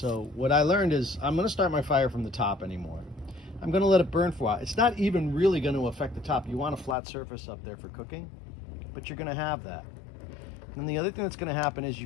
what I learned is I'm gonna start my fire from the top anymore. I'm gonna let it burn for a while. It's not even really gonna affect the top. You want a flat surface up there for cooking, but you're gonna have that. And the other thing that's gonna happen is you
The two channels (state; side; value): drops out; right; at 7.0 s